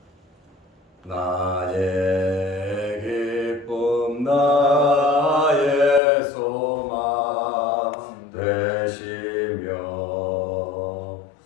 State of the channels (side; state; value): right; drops out; at 6.0 s